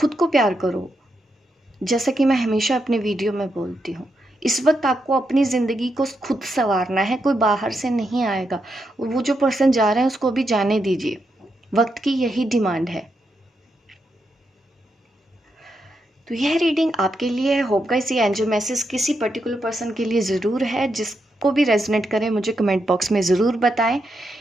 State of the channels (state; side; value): normal; both; correlation 0.83